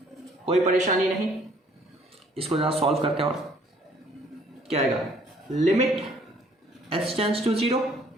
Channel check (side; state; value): both; normal; correlation 0.60